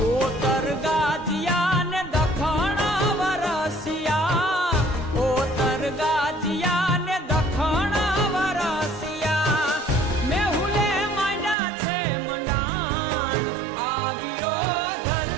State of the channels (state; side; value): drops out; left; at 11.6 s